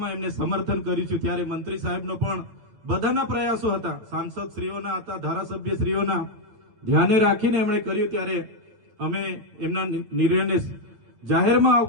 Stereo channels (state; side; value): late; left; 9.0 ms